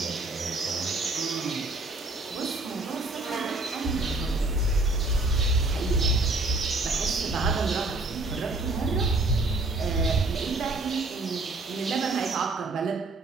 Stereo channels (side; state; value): left; quieter; 3.1 dB